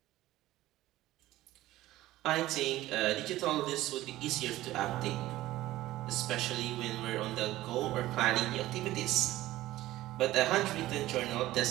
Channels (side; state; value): left; quieter; 16.0 dB